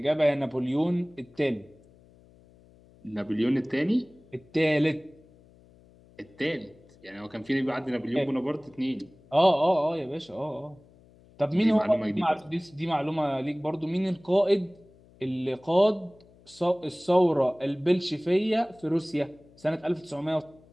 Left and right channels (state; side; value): noise; left; hum, 27 dB below the sound